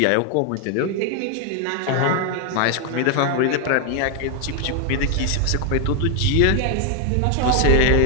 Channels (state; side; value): different; both; correlation 0.00